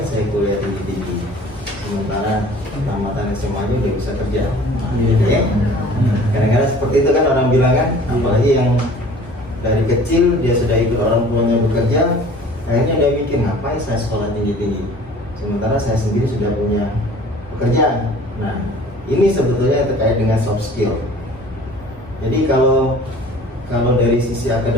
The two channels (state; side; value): normal; both; correlation 0.47